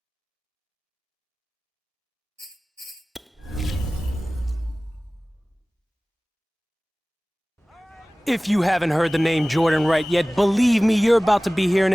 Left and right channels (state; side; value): normal; both; correlation 0.98